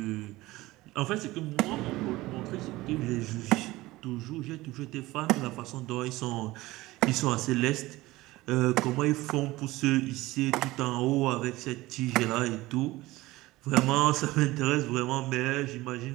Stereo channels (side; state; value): left; quieter; 18.8 dB